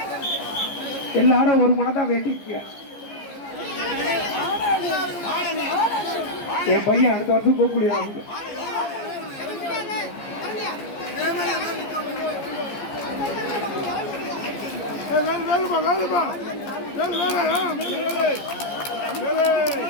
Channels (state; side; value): late; right; 14 ms